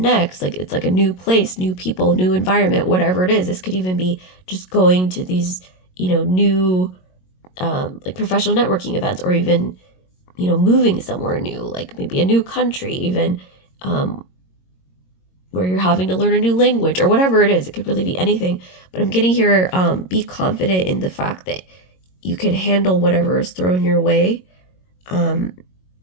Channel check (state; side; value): late; right; 22 ms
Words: next? Like, it's like a new place, new people, new environment, whatever it is. This could even be just going to these, new, like professional networking events, or even, moving somewhere new, like maybe a new country, even, where you're having to learn a new language or whatever it is. It could really be anything. But I'm getting here, be confident in the fact that you can handle whatever is thrown your way.